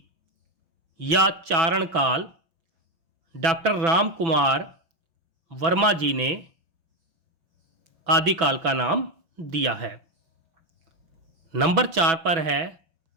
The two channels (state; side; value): late; left; 6.1 ms